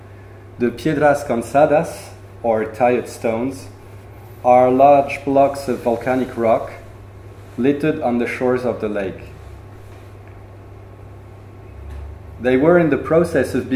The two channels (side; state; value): both; identical; correlation 1.00